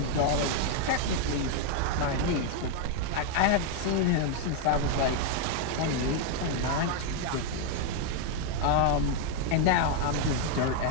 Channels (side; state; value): both; different; correlation 0.01